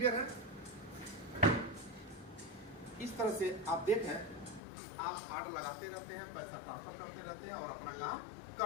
है? इस तरह से आप देखें, आप ऑर्डर लगाते रहते हैं, पैसा ट्रांसफर करते रहते हैं और अपना काम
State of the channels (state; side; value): drops out; right; at 4.6 s